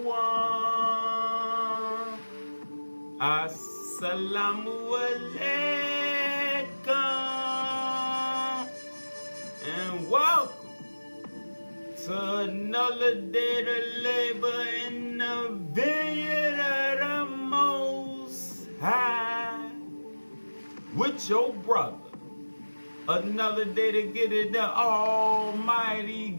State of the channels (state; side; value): inverted; both; correlation -1.00